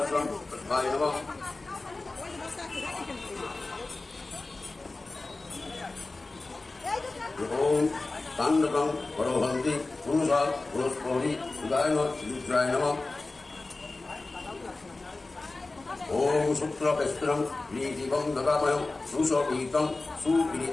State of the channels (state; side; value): quieter; right; 3.3 dB